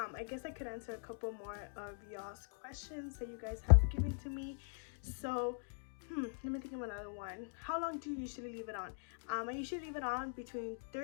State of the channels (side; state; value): right; silent; digital silence